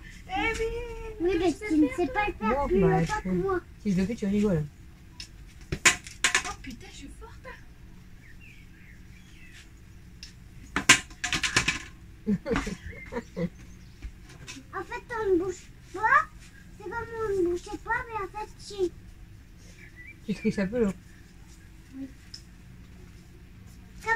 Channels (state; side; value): identical; both; correlation 1.00